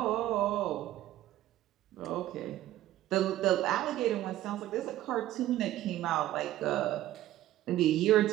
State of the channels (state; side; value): quieter; left; 14.2 dB